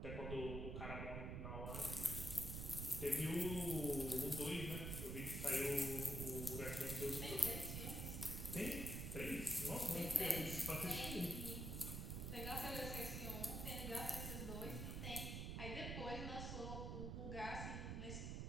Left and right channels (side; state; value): right; noise; rumble, 3 dB below the sound